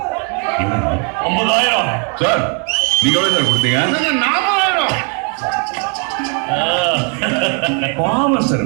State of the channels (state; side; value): quieter; left; 38.6 dB